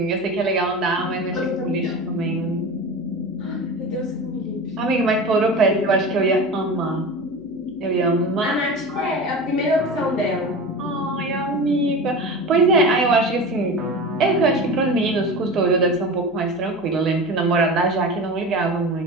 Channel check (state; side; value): noise; left; hum, 30 dB below the sound